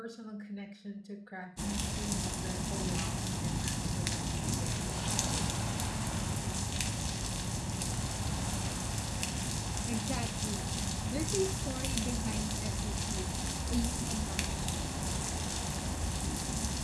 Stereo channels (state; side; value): identical; both; correlation 1.00